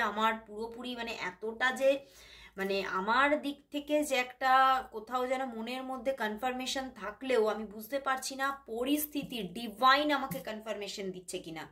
আমার পুরোপুরি মানে এতটা যে মানে আমার দিক থেকে যে একটা কোথাও যেন মনের মধ্যে কনফার্মেশন থাকলেও আমি বুঝতে পারছি না পরিস্থিতি ডিভাইন আমাকে কনফার্মেশন দিচ্ছে কিনা,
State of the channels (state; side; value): identical; both; correlation 1.00